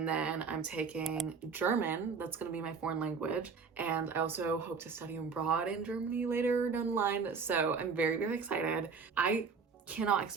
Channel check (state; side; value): quieter; left; 5.3 dB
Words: then I'm taking German. That's going to be my foreign language. And I also hope to study abroad in Germany later down the line. So I'm very, very excited. I cannot